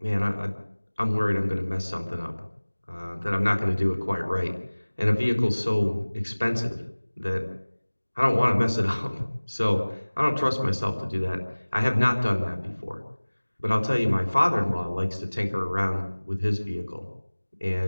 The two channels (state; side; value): inverted; both; correlation -1.00